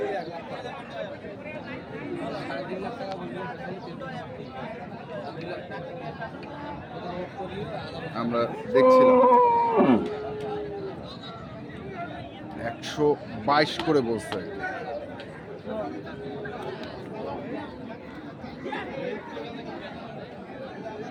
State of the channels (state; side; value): identical; both; correlation 1.00